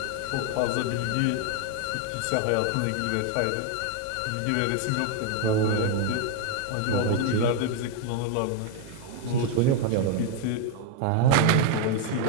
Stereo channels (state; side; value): different; both; correlation 0.01